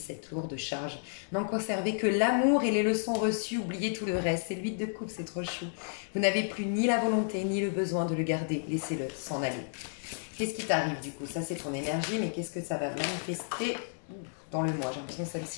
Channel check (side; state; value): right; silent; digital silence